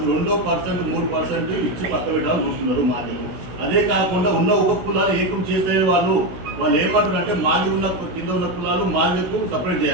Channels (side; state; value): left; late; 16 ms